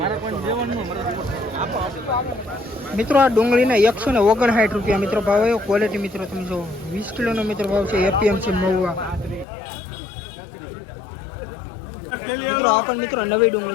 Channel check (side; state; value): right; drops out; at 9.5 s